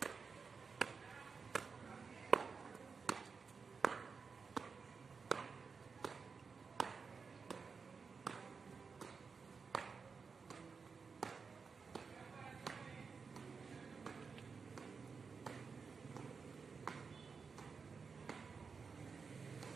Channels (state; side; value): quieter; left; 5.2 dB